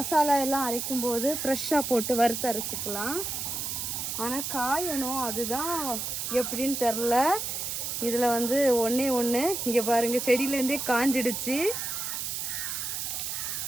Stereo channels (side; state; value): right; noise; hiss, 3 dB below the sound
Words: எல்லாம் அரைக்கும் போது ஃப்ரெஷ்ஷாக போட்டு வறுத்து அரைச்சிக்கலாம். ஆனால் காயணும், அதுதான் எப்படின்னு தெரில. இதில் ஒன்றே ஒன்று இங்கே பாருங்கள், செடியிலேருந்தே காஞ்சிடுச்சு.